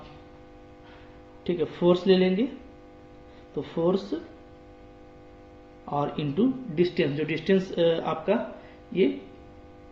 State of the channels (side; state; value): both; identical; correlation 1.00